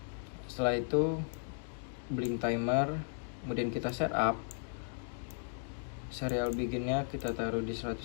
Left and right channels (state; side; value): silent; right; digital silence